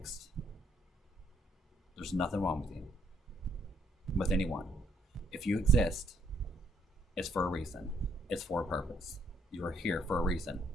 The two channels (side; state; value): both; normal; correlation 0.70